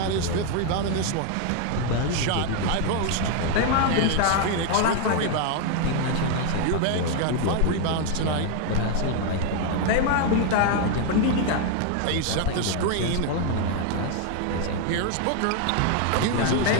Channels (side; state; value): both; different; correlation 0.01